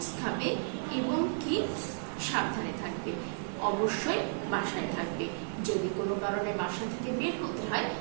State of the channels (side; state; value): left; silent; 56 dB below the other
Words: খাবে এবং কি সাবধানে থাকবে। অবশ্যই বাসায় থাকবে। যদি কোনো কারণে বাসা থেকে বের হতে হয়